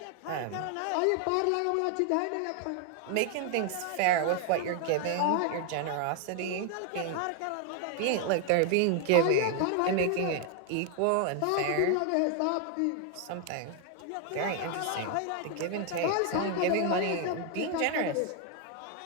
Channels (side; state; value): both; different; correlation 0.00